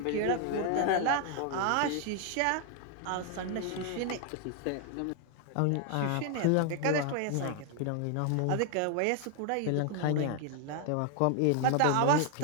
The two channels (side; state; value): both; different; correlation 0.00